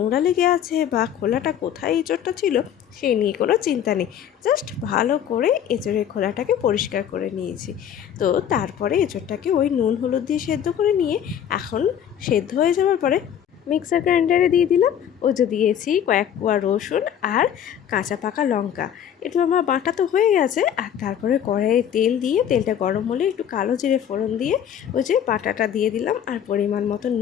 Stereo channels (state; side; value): quieter; right; 9.4 dB